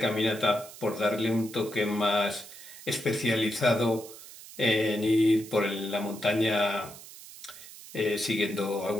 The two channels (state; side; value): noise; right; hiss, 16 dB below the sound